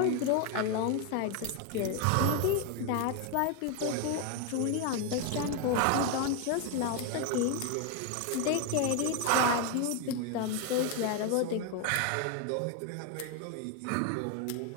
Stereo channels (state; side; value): different; both; correlation 0.01